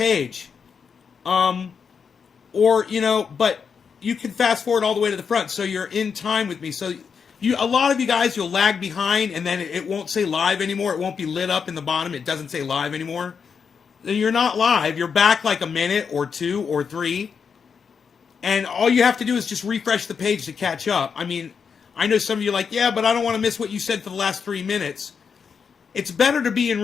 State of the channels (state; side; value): quieter; right; 6.2 dB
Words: Or, you know, but you can fast forward all the way to the front so you're in time with me. So a lot of you guys, you'll lag behind and then it won't say live anymore. It won't be lit up in the bottom. It doesn't say live anymore. Then you're not live. You're back like a minute or 2 or 3. And all you have to do is just refresh the page to catch up. I mean, I know some of you are like, yeah, but I don't want to miss what you said for the last 3 minutes. It's better to be in